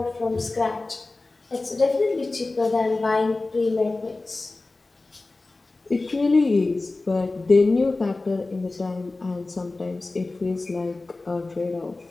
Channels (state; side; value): quieter; right; 3.3 dB